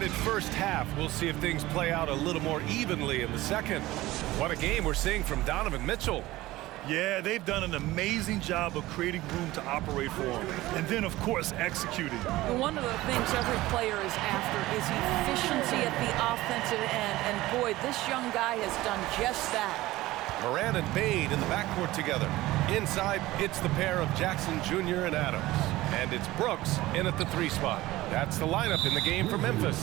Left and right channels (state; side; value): quieter; left; 17.7 dB